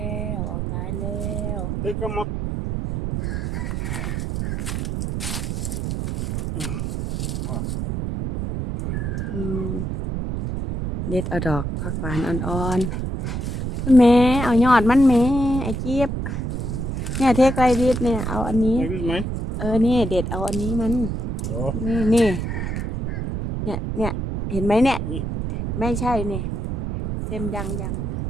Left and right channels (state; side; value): noise; right; rumble, 2 dB below the sound